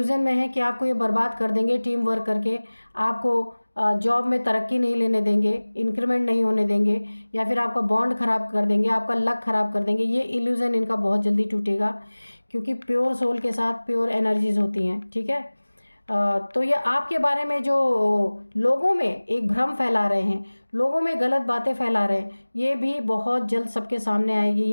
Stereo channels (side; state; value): both; inverted; correlation -1.00